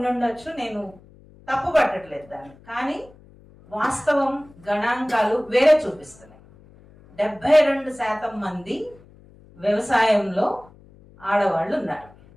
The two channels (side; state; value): left; noise; hum, 25 dB below the sound